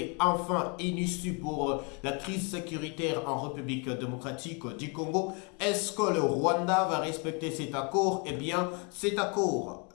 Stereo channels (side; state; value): right; quieter; 33.2 dB